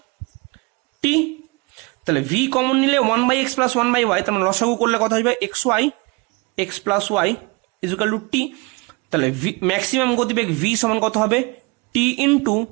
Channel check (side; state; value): left; quieter; 27.6 dB